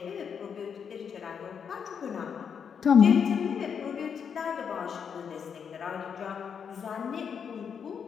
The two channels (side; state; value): right; quieter; 7.1 dB